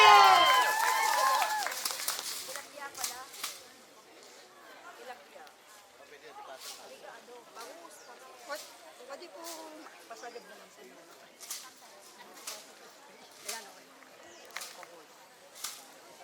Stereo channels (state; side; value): identical; both; correlation 1.00